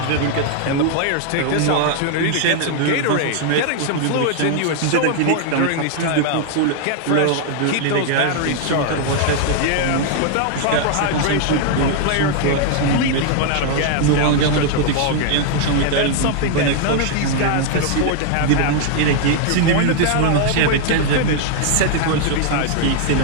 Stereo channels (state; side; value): different; both; correlation 0.00